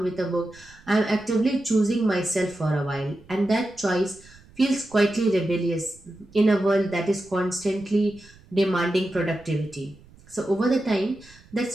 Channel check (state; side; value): noise; right; rumble, 25 dB below the sound